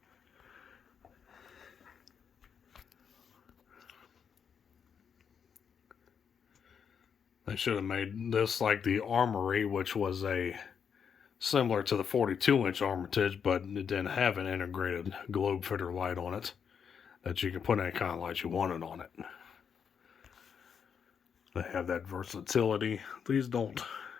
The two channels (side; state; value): right; quieter; 7.1 dB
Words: They should have made this like the Armory, which was a similar to the 42-inch Armitage, but it didn't have an integrated globe fitter light on it that you can put any kind of light you wanted on it. They have that versatility. These don't.